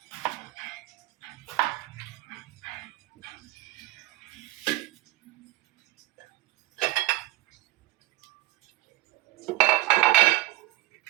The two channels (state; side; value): quieter; left; 17.5 dB